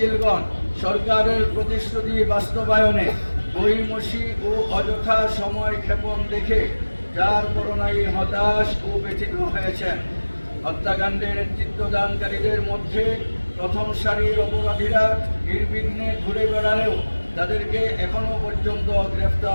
সরকারের প্রতিশ্রুতি বাস্তবায়নে গড়িমসি ও অযথা সময় ক্ষেপণ দেখে যার করোনায় হতাশ ও ব্যথিত হয়েছেন। হত্যাকাণ্ডে নেতৃত্বদানকারীদের মধ্যে প্রথম সারির অপরাধীরা নির্বিঘ্নে ঘুরে বেড়ালেও তাদেরকে এখনো পর্যন্ত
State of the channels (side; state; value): both; inverted; correlation -1.00